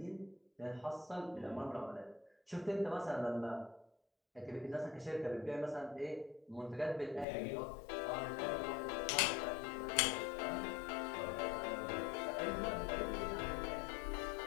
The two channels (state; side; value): drops out; right; at 7.2 s